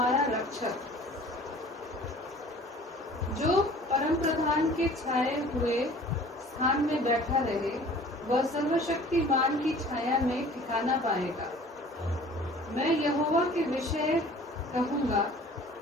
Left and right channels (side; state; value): both; normal; correlation 0.48